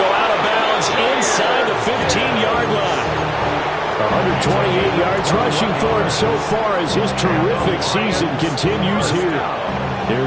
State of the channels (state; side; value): identical; both; correlation 1.00